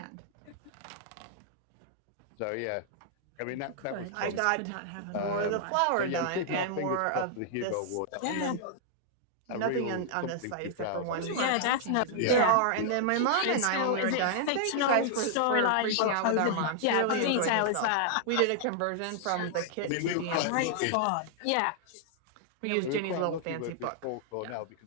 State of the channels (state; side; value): different; both; correlation -0.01